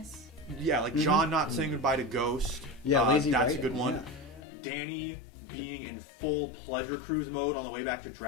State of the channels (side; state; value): right; drops out; at 4.4 s